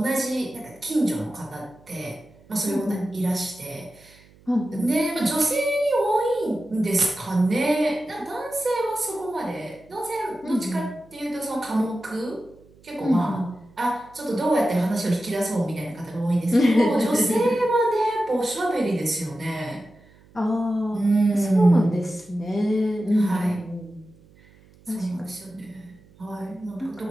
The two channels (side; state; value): right; noise; hum, 27 dB below the sound